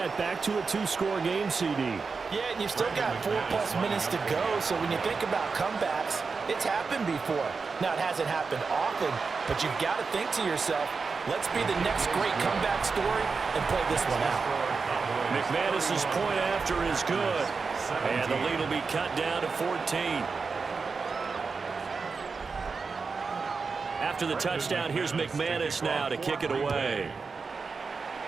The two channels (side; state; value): left; quieter; 4.8 dB